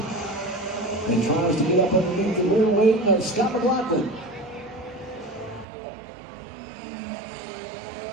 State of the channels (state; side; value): drops out; left; at 5.7 s